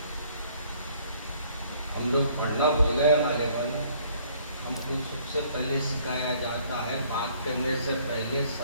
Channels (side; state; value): both; inverted; correlation -0.60